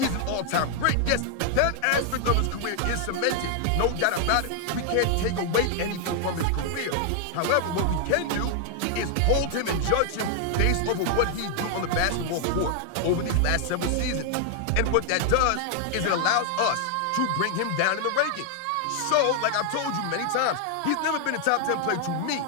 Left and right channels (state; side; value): different; both; correlation 0.00